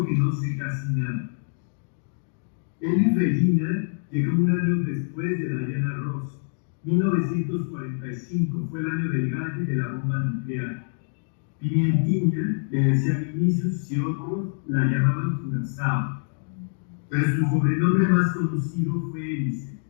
que no sé casi nada. Elis Regina llegó un año después de Diana Ross. 1945 fue el año del gallo y de la bomba nuclear. Pimientiña le decía a Vinicius y otros la llamaban Curazao, pero su sobrenombre más conocido fue Hélice.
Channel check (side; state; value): right; silent; digital silence